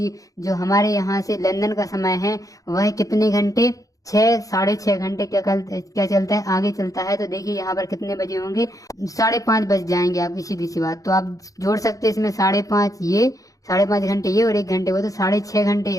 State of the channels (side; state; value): right; late; 0.17 ms